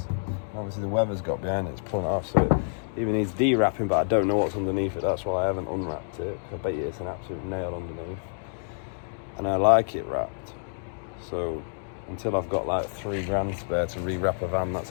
Obviously the weather's got behind it, it's pulling it off, so it even needs de-wrapping, but I don't know what's underneath it. That's why I haven't unwrapped it. I bet you it's an absolute nail underneath. And I like it wrapped. So until I've got like 3 grand spare to re-wrap a van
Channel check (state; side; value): silent; right; digital silence